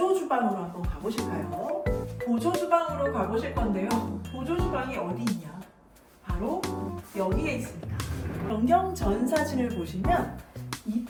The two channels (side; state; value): both; identical; correlation 1.00